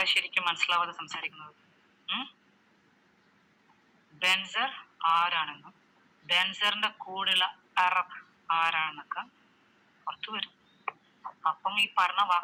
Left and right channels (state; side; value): identical; both; correlation 1.00